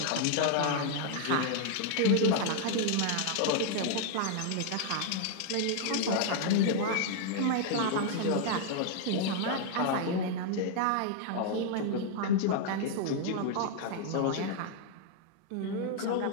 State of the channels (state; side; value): different; both; correlation 0.00